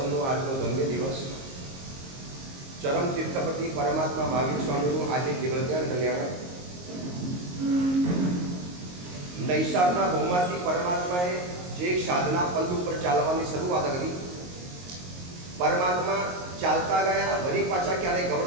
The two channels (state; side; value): late; left; 22 ms